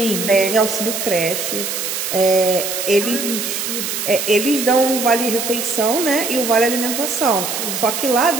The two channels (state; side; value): noise; right; hiss, 3 dB below the sound